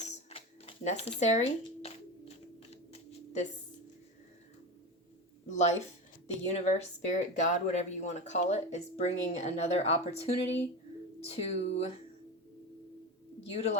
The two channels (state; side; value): normal; both; correlation 0.22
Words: necessary. This life, the universe, spirit, God, whatever you want to call it, is bringing another opportunity to